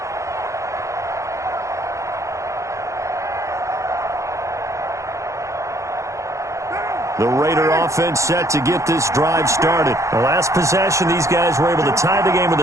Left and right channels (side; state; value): left; late; 0.15 ms